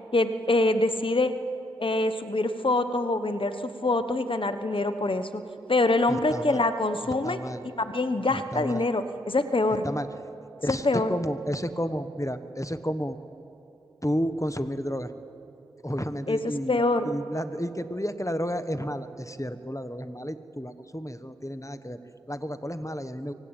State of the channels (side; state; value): both; normal; correlation 0.71